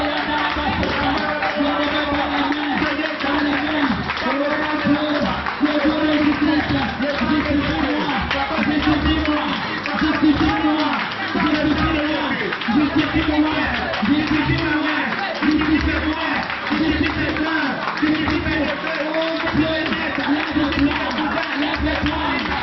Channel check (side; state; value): both; identical; correlation 1.00